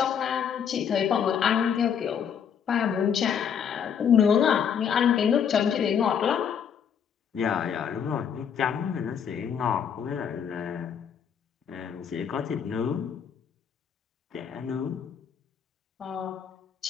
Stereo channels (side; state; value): right; quieter; 7.8 dB